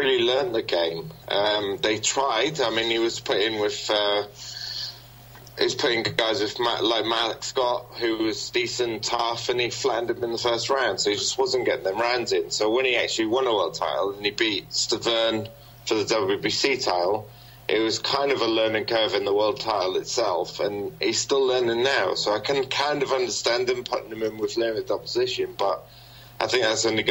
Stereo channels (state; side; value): identical; both; correlation 1.00